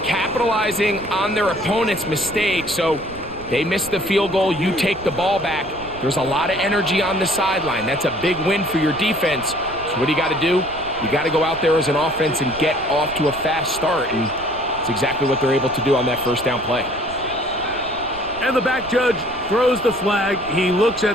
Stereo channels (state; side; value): noise; right; rumble, 18 dB below the sound